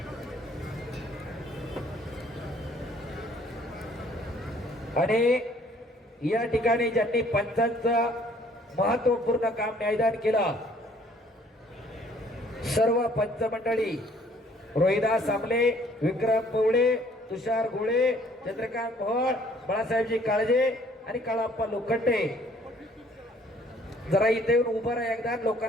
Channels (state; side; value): normal; both; correlation 0.59